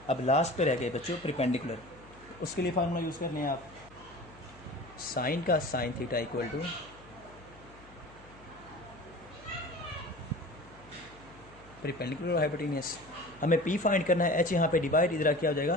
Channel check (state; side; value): noise; left; hum, 23 dB below the sound